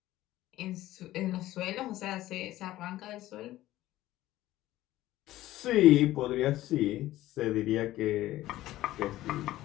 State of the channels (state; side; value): quieter; right; 15.5 dB